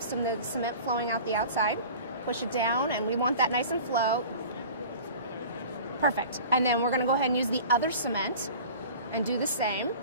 some of the cement flowing out the outside. Push it down, and we want that nice and flow. Perfect. And then we're going to go ahead and use the other cement and do the same.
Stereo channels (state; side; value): inverted; both; correlation -0.41